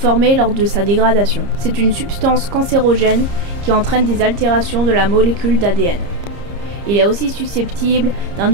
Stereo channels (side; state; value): left; late; 30 ms